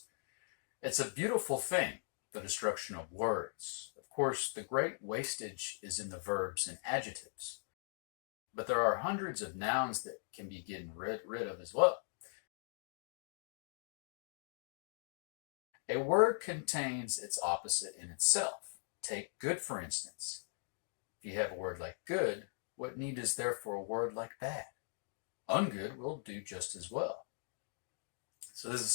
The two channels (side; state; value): right; silent; digital silence